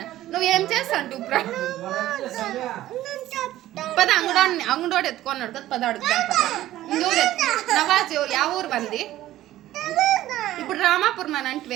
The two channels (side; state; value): left; quieter; 14.4 dB